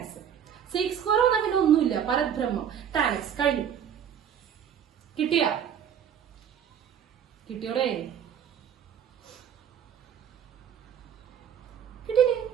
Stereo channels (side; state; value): left; quieter; 8.7 dB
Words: x. sec square വന്നാൽ പിന്നെ ഒന്നുമില്ല, പരബ്രഹ്മം. tan x കഴിഞ്ഞു. കിട്ടിയോടെ? കിട്ടിയില്ലേ?